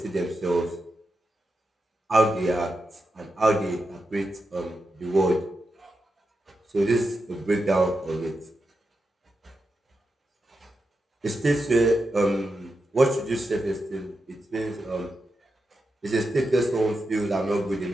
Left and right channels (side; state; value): both; normal; correlation 0.88